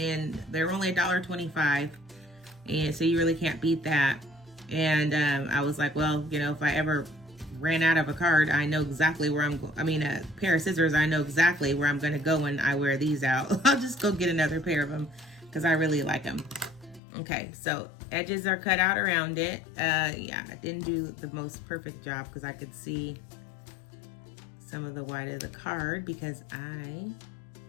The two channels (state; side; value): drops out; right; at 17.0 s